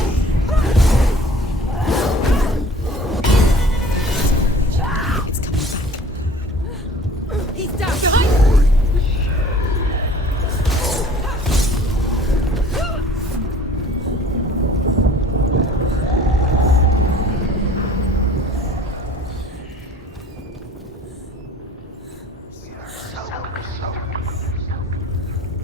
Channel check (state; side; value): normal; both; correlation 0.49